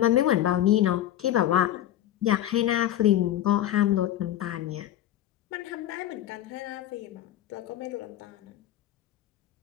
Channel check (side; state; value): right; quieter; 12.5 dB